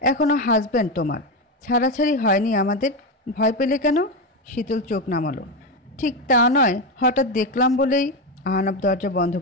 এখনো হাজব্যান্ড তোমার, ছাড়াছাড়ি হয়নি আমাদের। ভয় পেলে কেন? শীতল চোখ নামালো। ঠিক তা নয়, হঠাৎ দেখলাম বলেই। আহনাফ দরজা বন্ধ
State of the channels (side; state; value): both; normal; correlation 0.12